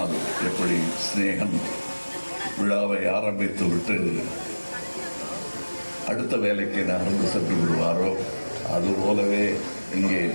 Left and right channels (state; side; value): inverted; both; correlation -1.00